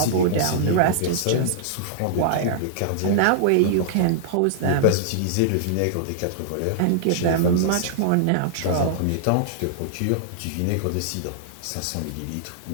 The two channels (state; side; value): different; both; correlation -0.01